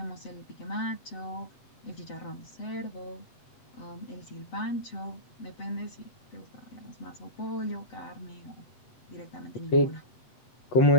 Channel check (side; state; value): right; late; 8.0 ms